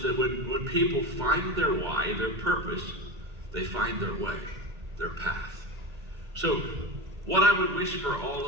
that when people find their why, their purpose, they find their way, their path. So what I would wish for all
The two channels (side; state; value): left; late; 1.8 ms